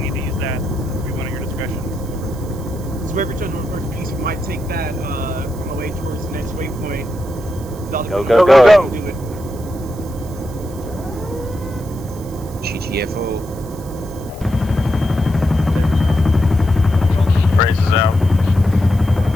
to use that, it'll be one at your discretion. So wherever turn on first piece, we might take that on the way towards the next waypoint. Go. Do it. GTFO. Braces out.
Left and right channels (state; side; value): noise; right; hiss, 21 dB below the sound